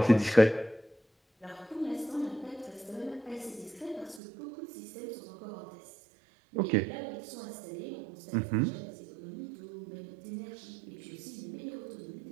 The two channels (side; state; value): left; drops out; at 4.2 s